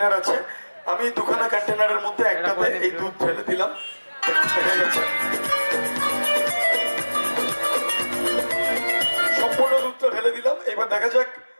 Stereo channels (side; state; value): both; inverted; correlation -1.00